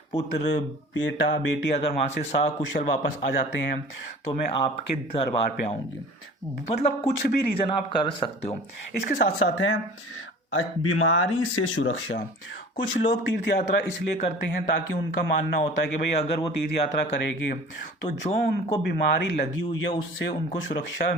पुत्र, बेटा, बेटी अगर वहाँ से सकुशल वापस आ जाते हैं तो मैं आपके दरबार पे आऊँगी। मतलब कुछ भी रीज़न आप कर सकते हो। इसके साथ साथ है बीमारी से सुरक्षा। कुछ लोग तीर्थ यात्रा इसलिए करते हैं ताकि उनका मानना होता है कि भाई अगर वो तीर्थ यात्रा करेंगे तो जो उनको बीमारी लगी हुई है उससे उनको सुरक्षा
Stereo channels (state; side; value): normal; both; correlation 0.43